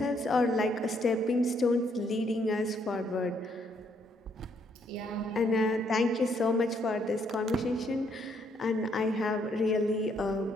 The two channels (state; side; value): normal; both; correlation 0.71